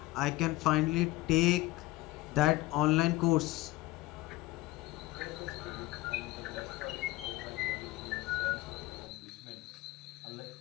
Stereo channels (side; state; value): right; quieter; 19.1 dB